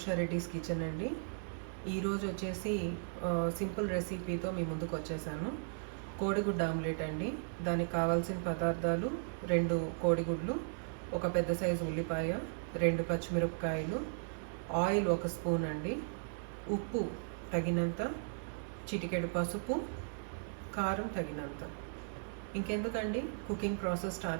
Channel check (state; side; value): silent; left; digital silence